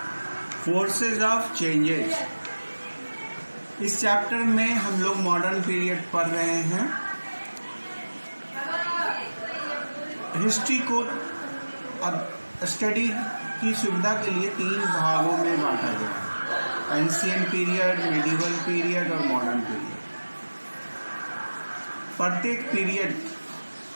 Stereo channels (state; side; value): inverted; both; correlation -1.00